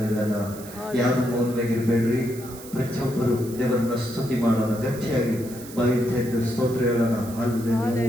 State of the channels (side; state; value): right; noise; hiss, 16 dB below the sound